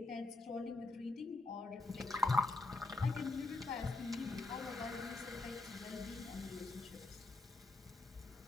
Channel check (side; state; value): right; quieter; 3.3 dB